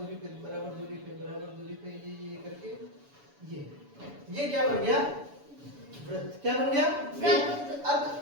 पे, बराबर दूरी पे, बराबर दूरी पे, ये करके ये क्या बन गया? वृत्त। क्या बन गया? वृत्त।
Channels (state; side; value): late; left; 7.0 ms